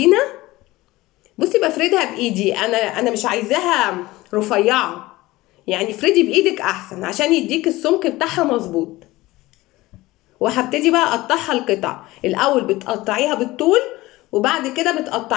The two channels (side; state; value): right; quieter; 19.0 dB